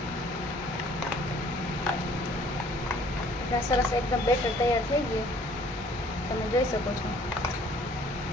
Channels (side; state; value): both; normal; correlation 0.57